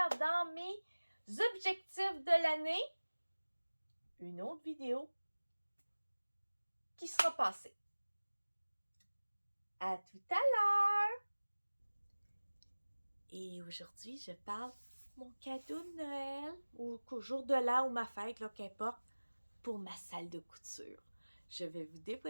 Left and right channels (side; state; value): both; inverted; correlation -1.00